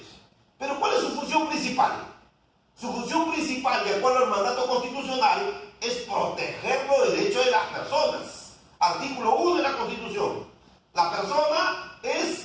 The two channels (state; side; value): identical; both; correlation 1.00